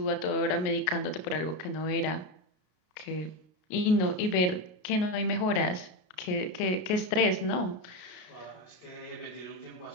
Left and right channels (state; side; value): late; right; 33 ms